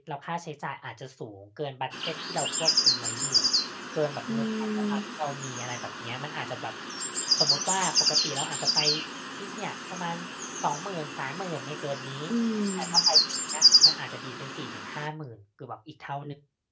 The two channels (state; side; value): identical; both; correlation 1.00